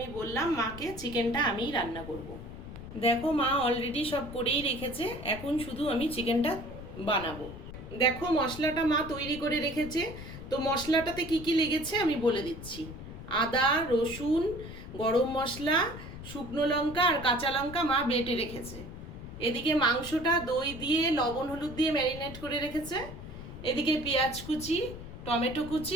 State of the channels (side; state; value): left; noise; rumble, 12 dB below the sound